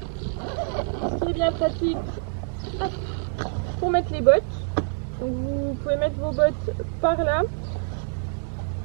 Ce qui est bien pratique pour mettre les bottes. Donc vous pouvez mettre vos bottes par là.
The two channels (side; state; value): left; silent; digital silence